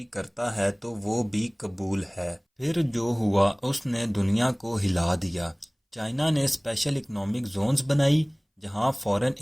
کرتا ہے تو وہ بھی قبول ہے۔ پھر جو ہوا اس نے دنیا کو ہلا دیا۔ چائنا نے اسپیشل اکنامک زونز بنائی جہاں فارن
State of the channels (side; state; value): both; identical; correlation 1.00